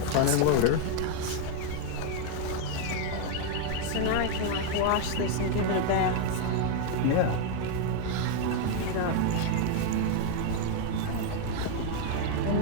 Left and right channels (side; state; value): both; different; correlation 0.00